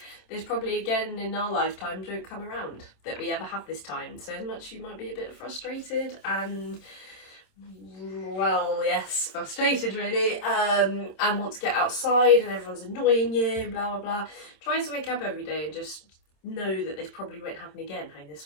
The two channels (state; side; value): late; right; 27 ms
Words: there's probably, again, in our lifetime, don't come around that we ever have this time. So as much you might be a bit frustrated and, well, yes, frustrated really, and want to get outside and everyone's annoying you, blah, blah, blah. Try to wake up every day and just know that this probably won't happen again, having this